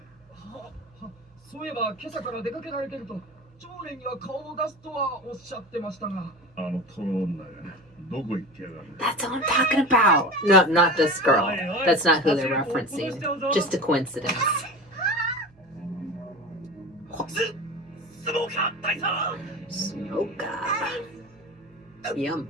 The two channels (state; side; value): noise; right; hum, 29 dB below the sound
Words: そういえば今朝から出かけられてると、長連には顔を出すとはおっしゃってましたが。あのトロ女がどこ行ってやがる。 That's what I'm talking about. No, not this girl. That's not who they're referencing. Just a coincidence. スモーカー大佐。 Smoker. Yum.